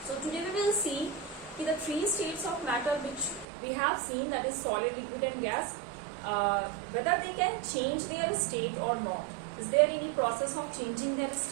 So today we will see the three states of matter which we have seen, that is solid, liquid and gas, whether they can change their state or not. Is there any process of changing their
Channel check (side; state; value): left; drops out; at 3.5 s